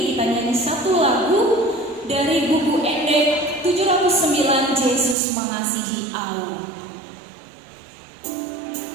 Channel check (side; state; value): left; drops out; at 5.2 s